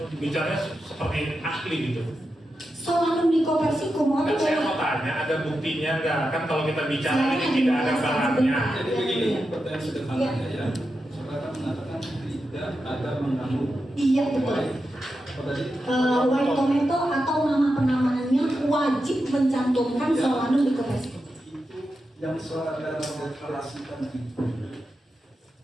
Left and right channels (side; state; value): both; normal; correlation 0.89